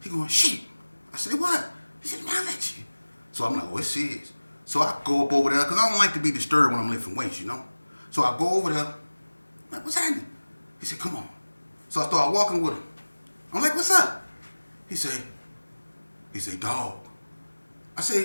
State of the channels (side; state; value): both; inverted; correlation -1.00